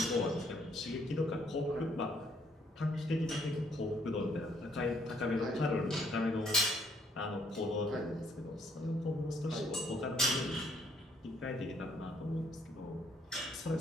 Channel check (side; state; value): both; normal; correlation 0.68